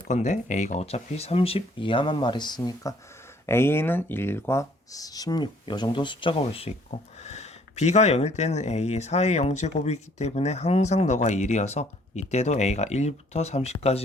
a가 어차피 30 이하만 말했으니까 a는 1과 16 이 정도 숫자가 올 수 있고 b가 0일 때는 a의 4의 0제곱이기 때문에 항상 너가 1이어서 이때도 a가 1부터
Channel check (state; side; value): normal; both; correlation 0.61